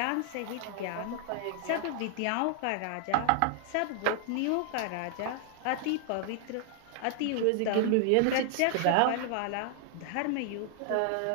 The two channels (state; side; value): different; both; correlation 0.00